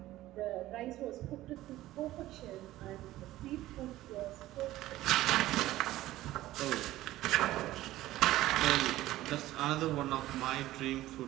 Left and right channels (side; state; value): left; quieter; 15.7 dB